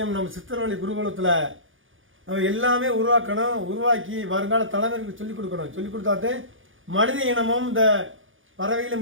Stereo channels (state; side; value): late; left; 0.58 ms